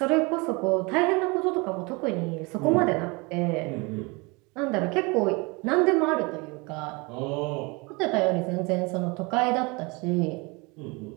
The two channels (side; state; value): left; quieter; 27.6 dB